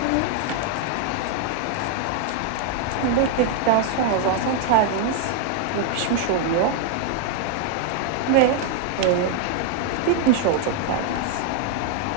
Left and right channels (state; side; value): different; both; correlation 0.00